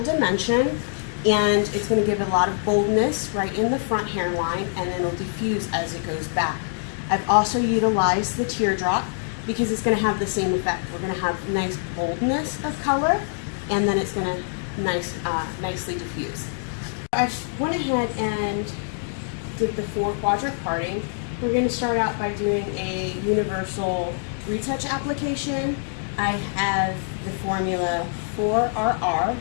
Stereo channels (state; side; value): silent; right; digital silence